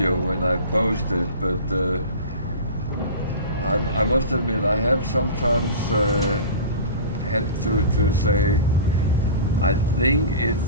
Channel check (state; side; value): inverted; both; correlation -0.35